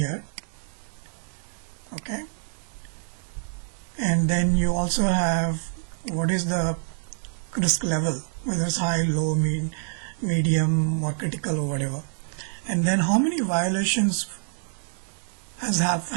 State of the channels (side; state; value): left; silent; digital silence